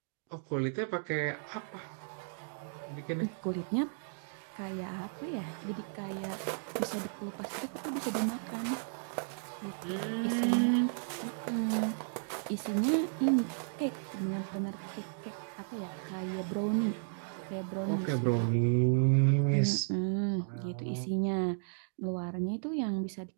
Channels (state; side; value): silent; left; digital silence